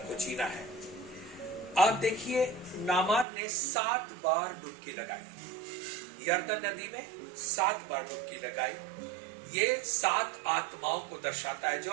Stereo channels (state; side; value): drops out; left; at 3.2 s